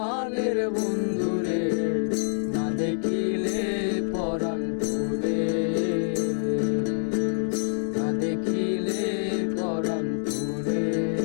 বন্ধুরে, না দেখিলে পরাণ পুরে, না দেখিলে পরাণ পুরে।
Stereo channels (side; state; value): right; silent; 61 dB below the other